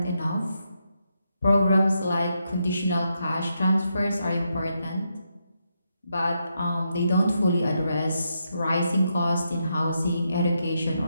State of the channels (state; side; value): inverted; both; correlation -0.82